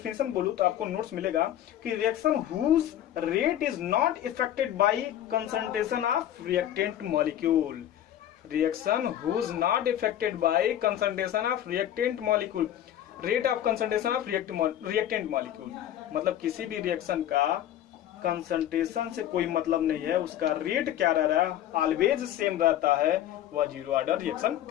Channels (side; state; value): right; quieter; 11.6 dB